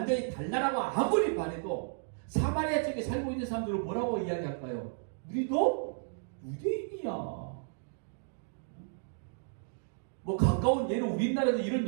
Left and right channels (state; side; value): silent; left; digital silence